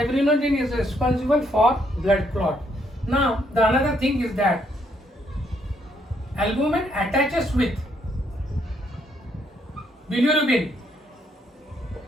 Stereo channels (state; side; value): normal; both; correlation 0.72